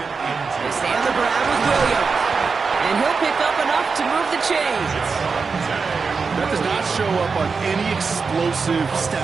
and 2. They stay on the ground with Williams. And he'll pick up enough to move the chains. That does not show up on any explosive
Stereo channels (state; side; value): quieter; left; 5.0 dB